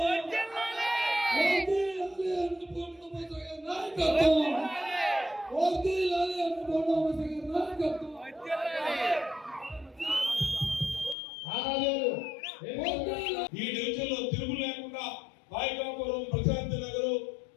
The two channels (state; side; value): drops out; right; at 11.2 s